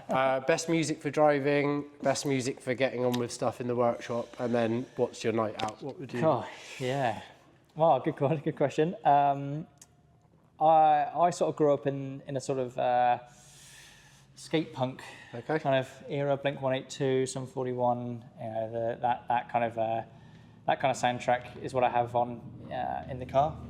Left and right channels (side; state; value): both; identical; correlation 1.00